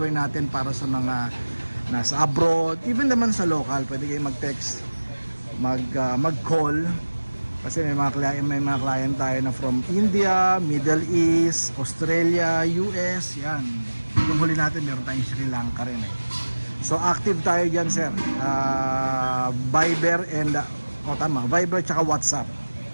natin para sa mga nasa abroad, even naman sa local. Pwede kayong mag-text, mag-call kasi may mga client tayo na from India, Middle East, Australia, US. Yan, yung huli natin meron tayong Sri Lanka rin So active tayo dyan sir. Viber and Viber tsaka WhatsApp.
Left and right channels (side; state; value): both; inverted; correlation -1.00